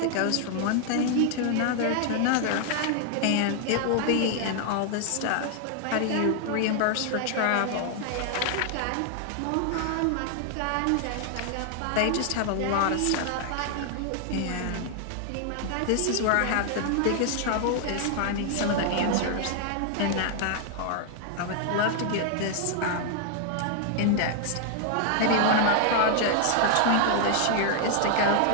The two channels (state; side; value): different; both; correlation 0.00